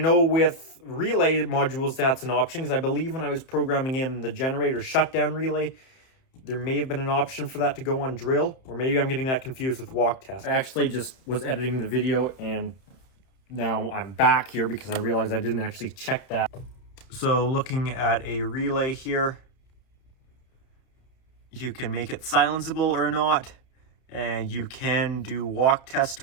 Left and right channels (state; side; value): late; right; 31 ms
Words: with relay modules that's an option, because I believe when I was programming in the generator shutdown relay, there may have been an option for that to go on drill, or maybe I'm getting that confused with walk test. I actually just was editing the video and now I'm back here because I realized I didn't actually check that. So looking at a relay here, you can make it silenceable or not, and you can do walk test